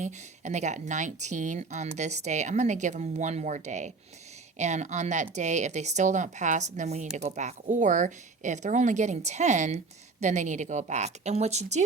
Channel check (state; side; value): quieter; left; 4.0 dB